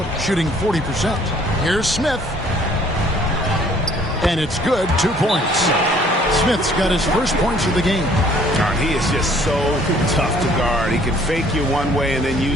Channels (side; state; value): both; normal; correlation 0.58